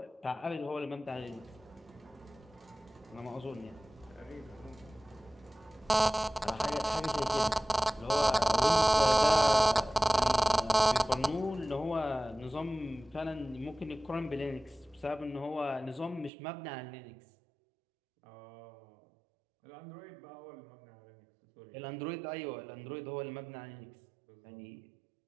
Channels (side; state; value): left; drops out; at 16.3 s